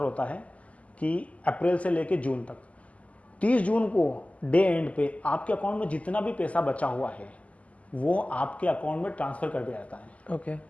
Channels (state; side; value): late; right; 0.068 ms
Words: होता है कि अप्रैल से लेके जून तक, 30 जून को डे एंड पे आपके अकाउंट में जितना भी पैसा बचा हुआ है वो आपके अकाउंट में ट्रांसफर कर दिया जाता है। ओके,